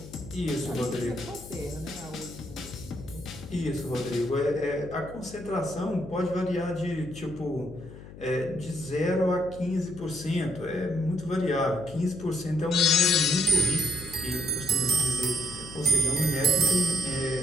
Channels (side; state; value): left; noise; hum, 16 dB below the sound